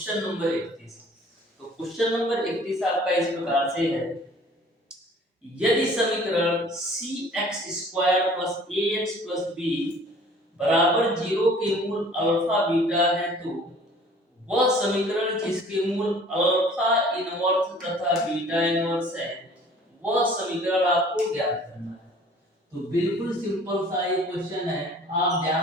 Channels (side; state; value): both; normal; correlation 0.51